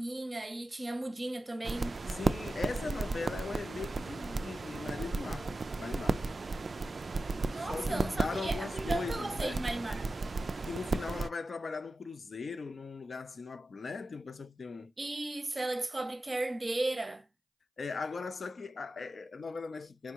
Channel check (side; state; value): both; normal; correlation 0.92